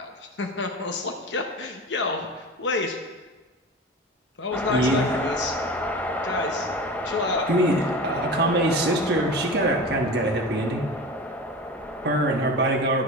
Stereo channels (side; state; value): both; normal; correlation 0.32